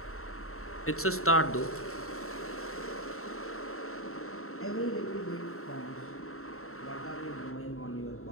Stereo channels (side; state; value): right; late; 0.63 ms